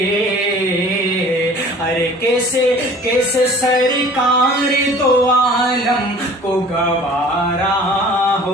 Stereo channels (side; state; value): both; normal; correlation 0.47